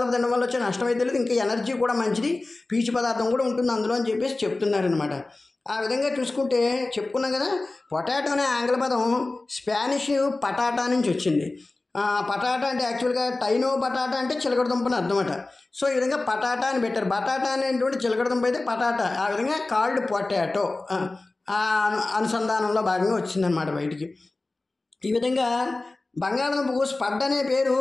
తినడం వల్ల వచ్చే నష్టం అయితే లేదు, ఇంకా ఎనర్జీ కూడా మంచిది, పీచు పదార్థం కూడా ఉంటుంది అందులో అని చెప్పేసి చెప్తున్నారనమాట. ఆ విధంగా చూసుకుంటే చెప్పుకున్నాం కదా, పొటాటో అనే ఆంగ్ల పదం స్పానిష్ పటాటా నుంచి వచ్చింది. పటాటా అంటే యాక్చువల్గా టైనో బటాటా అంటే చిలకడ దుంపని అర్థమట. సో ఈ విధంగా పటాటా అని పెట్టారు. బటాటా అనేటువంటి చిలకడ దుంప అయితే పటాటా, ఆ విధంగా కాల్డ్ పొటాటో అనుసంధానంలో భాగంగా వచ్చిందనమాట బయటికి. ఈ విధంగా బంగాళదుంపకు స్పడ్ అనే పేరు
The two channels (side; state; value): right; quieter; 3.1 dB